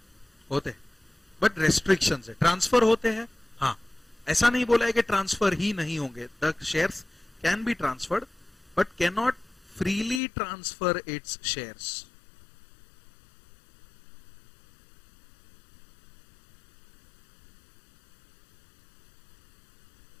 होते, बट रेस्ट्रिक्शंस है. ट्रांसफर होते हैं, हाँ. ऐसा नहीं बोला है कि ट्रांसफर ही नहीं होंगे. The shares can be transferred but can not freely transfer its shares.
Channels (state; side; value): drops out; right; at 10.2 s